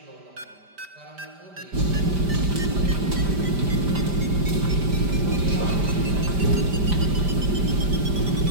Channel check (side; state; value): left; late; 5.1 ms